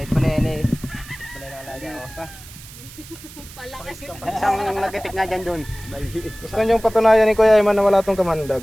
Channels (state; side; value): noise; right; hiss, 18 dB below the sound